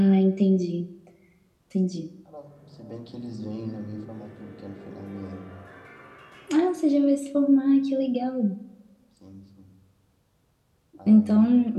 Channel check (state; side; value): identical; both; correlation 1.00